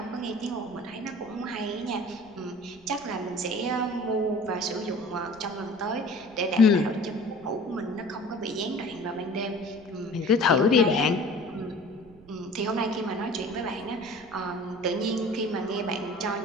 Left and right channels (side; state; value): right; noise; rumble, 25 dB below the sound